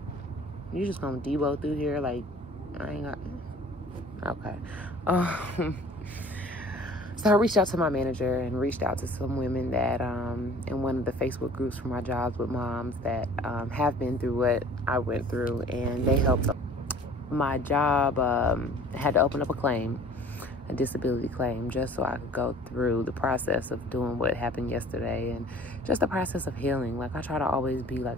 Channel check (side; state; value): both; normal; correlation 0.48